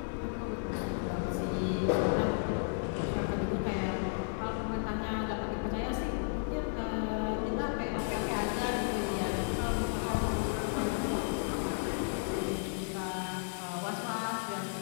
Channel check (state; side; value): silent; right; digital silence